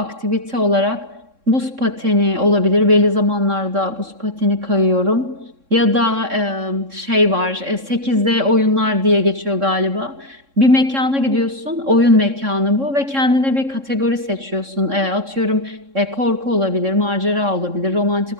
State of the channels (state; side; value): late; left; 3.6 ms